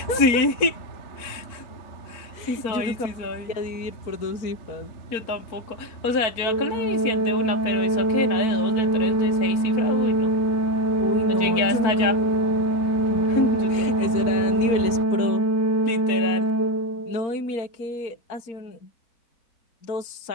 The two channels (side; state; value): right; late; 4.4 ms